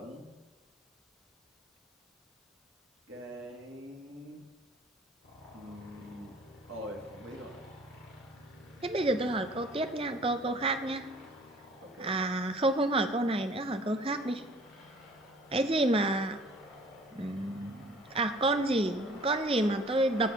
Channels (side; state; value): both; normal; correlation 0.52